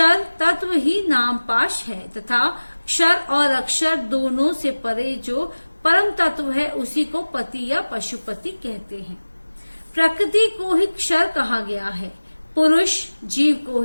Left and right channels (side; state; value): both; inverted; correlation -1.00